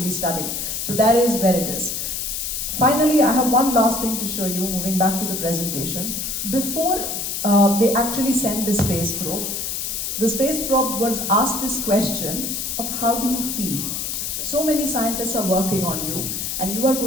studying. So that is where it is. Finally, I have one last thing to show you, moving back to the presentation. Before they actually sent the space probe, the space probe was asked this question of how do you feel? So many scientists are working on you, and you are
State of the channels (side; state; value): left; noise; hiss, 3 dB below the sound